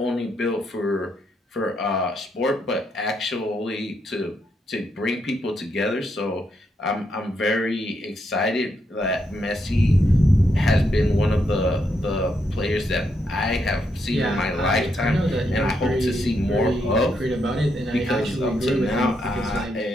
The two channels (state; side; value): normal; both; correlation 0.79